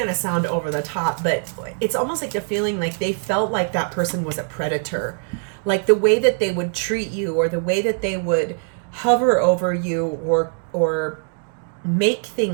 to sound over the top, but it's almost like the feeling like they felt like that person was a predator. Like the way that they would treat you, or the way that they would hover over you, or make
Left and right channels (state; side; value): silent; left; 58 dB below the other